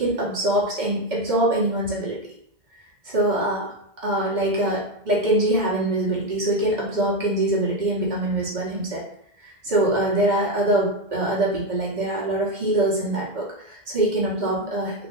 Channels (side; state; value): left; late; 2.1 ms